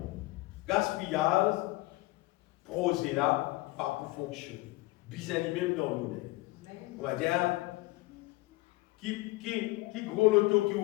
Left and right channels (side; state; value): right; quieter; 20.6 dB